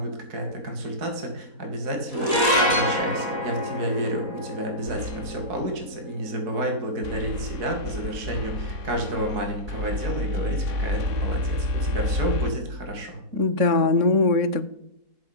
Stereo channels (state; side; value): late; left; 4.1 ms